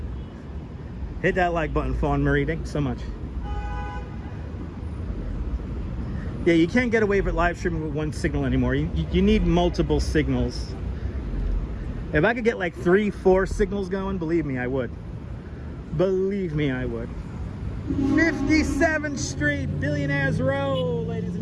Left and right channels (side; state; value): both; identical; correlation 1.00